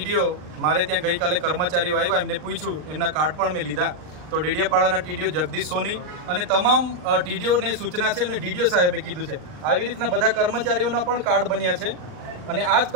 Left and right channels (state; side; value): late; left; 39 ms